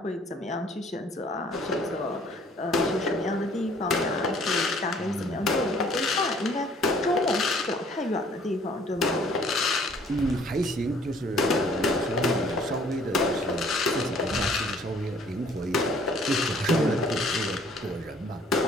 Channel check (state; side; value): normal; both; correlation 0.58